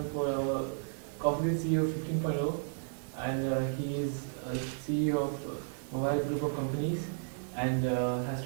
for our Coffee CEO 15.0, and he is CEO of mobile group of companies, and has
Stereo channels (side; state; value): left; silent; digital silence